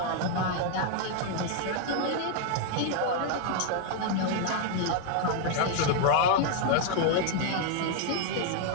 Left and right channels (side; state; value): both; different; correlation 0.00